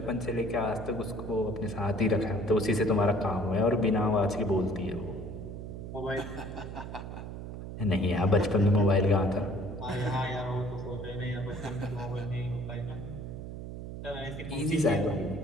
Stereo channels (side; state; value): right; noise; hum, 8 dB below the sound